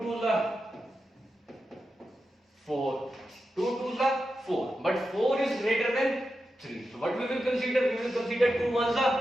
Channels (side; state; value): both; normal; correlation 0.90